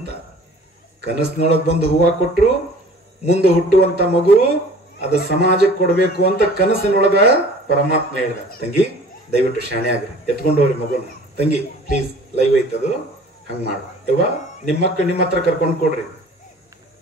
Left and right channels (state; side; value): normal; both; correlation 0.48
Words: ಕನಸಿನೊಳಗೆ ಬಂದು ಹೂವ ಕೊಟ್ರು. ಮುಂದೆ ಹುಟ್ಟುವಂತ ಮಗು ಅದು ಸಮಾಜಕ್ಕೆ ಕೊಡ್ಬೇಕು ಅಂತ ಕನಸಿನೊಳಗ ಪರಮಾತ್ಮ ಹೇಳಿದ. ತಂಗಿ ದಯವಿಟ್ಟು ಶಾಣೆ ಆಗ್ರಿ, ಎತ್ಕೊಂಡು ಹೋಗ್ರಿ ಮಗುನ. ತಂಗಿ ಪ್ಲೀಸ್, ಲೈವ್ ಐತದು, ಹಂಗ ಮಾಡ. ಯವ್ವ ನಿಮ್ಮ ಮಕ್ಕಳು ನಿಮ್ಮ ಹತ್ರ ಕರ್ಕೊಂಡು ಕೊಡ್ರಿ,